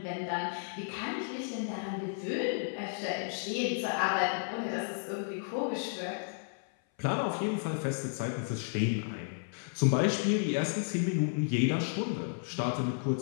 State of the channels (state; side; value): silent; right; 56 dB below the other